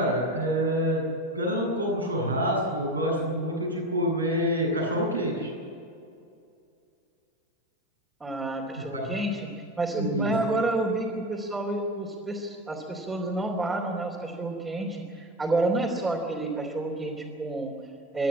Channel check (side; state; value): both; normal; correlation 0.21